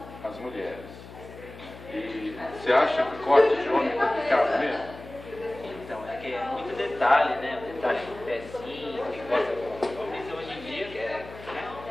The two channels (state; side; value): noise; left; hum, 16 dB below the sound